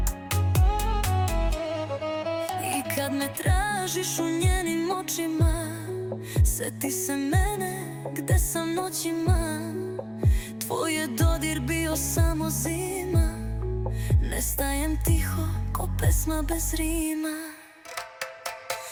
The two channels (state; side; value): identical; both; correlation 1.00